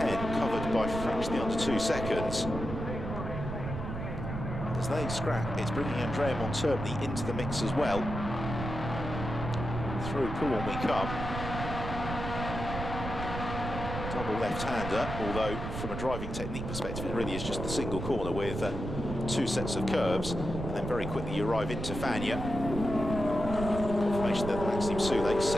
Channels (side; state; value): right; noise; rumble, 5 dB below the sound